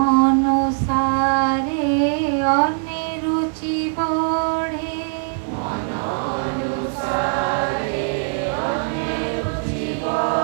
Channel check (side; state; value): left; silent; digital silence